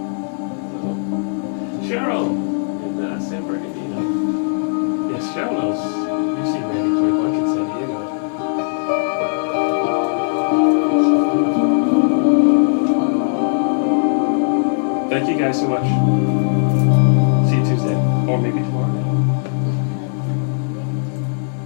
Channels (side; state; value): right; silent; 67 dB below the other